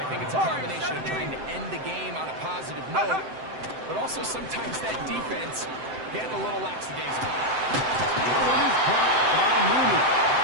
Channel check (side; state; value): left; late; 7.8 ms